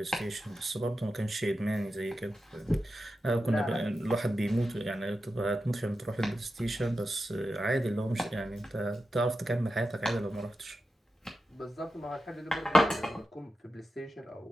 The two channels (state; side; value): normal; both; correlation 0.91